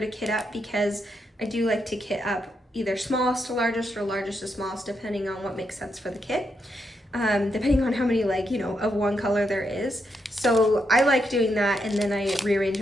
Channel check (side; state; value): both; normal; correlation 0.81